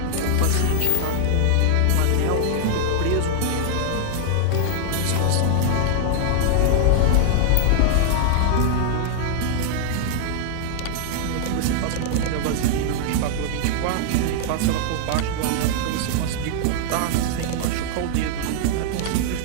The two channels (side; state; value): both; different; correlation -0.01